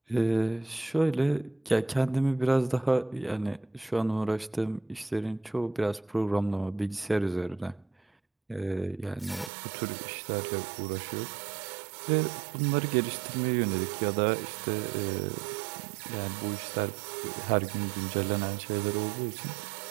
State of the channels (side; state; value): left; drops out; at 9.5 s